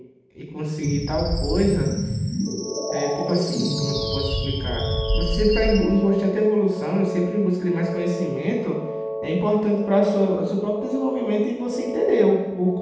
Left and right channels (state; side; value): identical; both; correlation 1.00